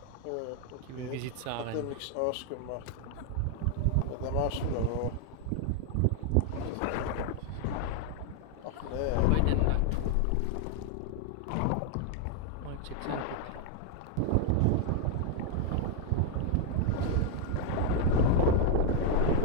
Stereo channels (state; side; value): different; both; correlation 0.00